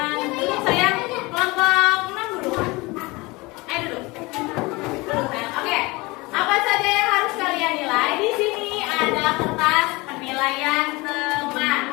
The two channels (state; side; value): quieter; right; 23.6 dB